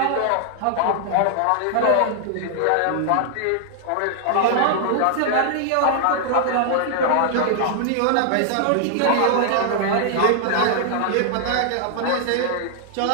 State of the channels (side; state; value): both; different; correlation 0.00